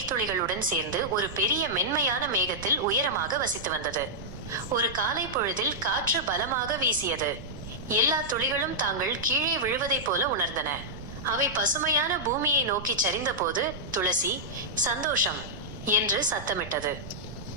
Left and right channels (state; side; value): noise; right; rumble, 12 dB below the sound